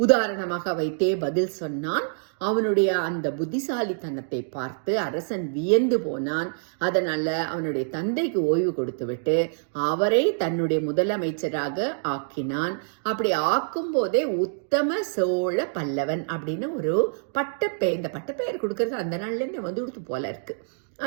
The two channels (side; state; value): left; silent; digital silence